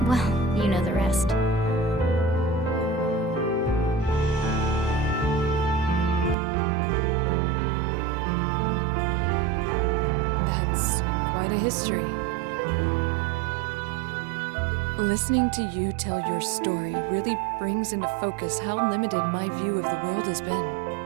well, you know the rest. That's quite a history. Listening to you tell your story really brings into focus how limited my view of the world has been.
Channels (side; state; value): left; drops out; at 6.4 s